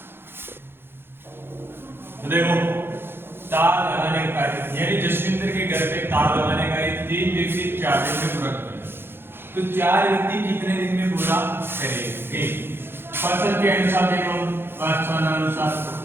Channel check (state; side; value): late; left; 0.11 ms